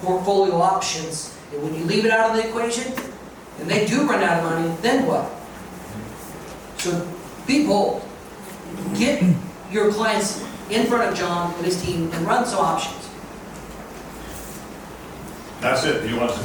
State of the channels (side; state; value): both; identical; correlation 1.00